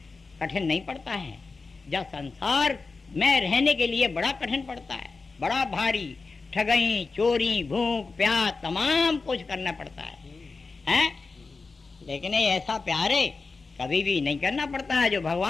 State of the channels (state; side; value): quieter; right; 4.1 dB